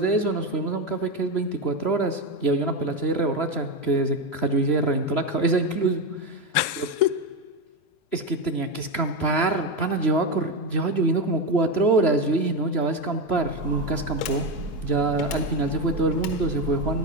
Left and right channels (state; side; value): late; right; 3.1 ms